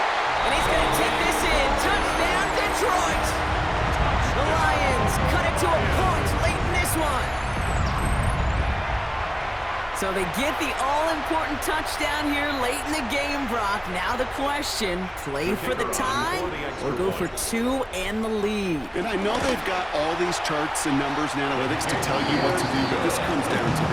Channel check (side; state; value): both; identical; correlation 1.00